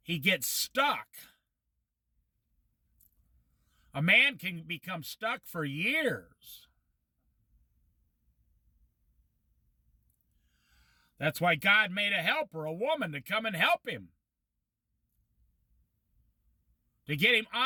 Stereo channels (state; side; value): identical; both; correlation 1.00